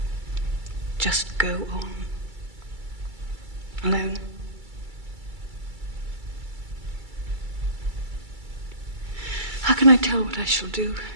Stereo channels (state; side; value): late; left; 2.3 ms